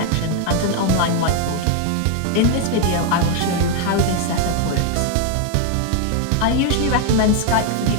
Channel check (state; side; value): different; both; correlation 0.01